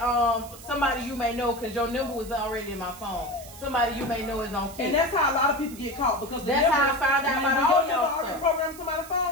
somebody you may know, because your number was already in my phone. Somebody you may know is on Kik. And that's how a lot of people get caught, because that's how I found out about all y'all stuff. Program somebody's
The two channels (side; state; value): right; noise; hiss, 17 dB below the sound